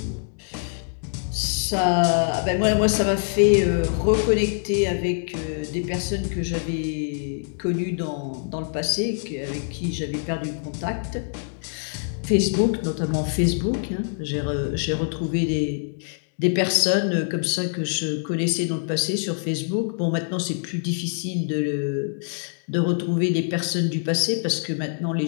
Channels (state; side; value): silent; right; digital silence